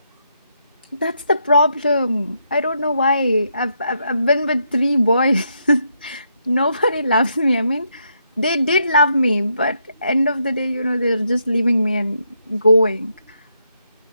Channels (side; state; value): both; inverted; correlation -0.79